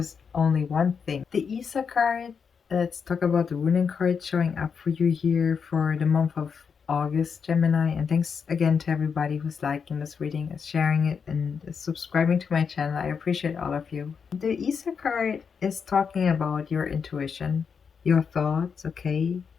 only one thing. The Isa card, let's talk about the ruling card showing up for you here for the month of August, Gemini. And thanks again to everybody who's liking this reading, is sharing it, and is subscribing to my channel. I appreciate all of you. The Isa card is talking about your intuition, your thoughts, okay?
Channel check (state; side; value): quieter; right; 6.2 dB